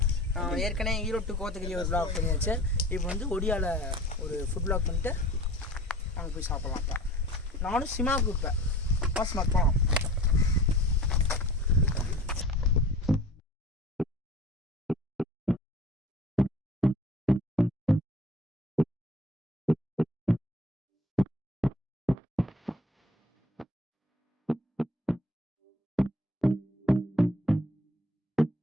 ஏற்கனவே ஈரோடு கோத்தகிரி ஒரு விளாக் பண்ணியாச்சு. இப்போ வந்து ஒடியாவில் ஒரு ஃபுட் விளாக் பண்ணிட்டு அங்கே போய் சாப்பிட்லாம். இப்போ நானும் சிமா கூப்பிட்டேன். சிமாக்கு போகலாம்.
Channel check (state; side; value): normal; both; correlation 0.45